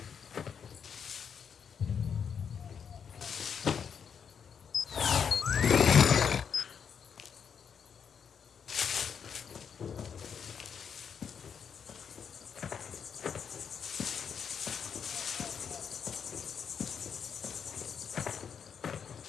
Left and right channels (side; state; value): right; quieter; 7.1 dB